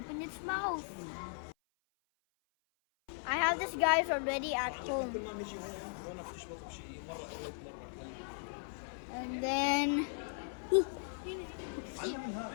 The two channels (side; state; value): right; silent; 52 dB below the other